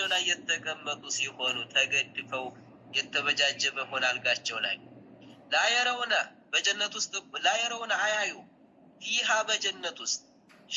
ላይ የተቀመጡ ሲሆኑ ተገድፈው የተበጃጀበ ሆነ አልጋቸው ላይ لا يرون በጀነት ውስጥ لا يرون አያዩ فيها በጀነት ውስጥ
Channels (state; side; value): identical; both; correlation 1.00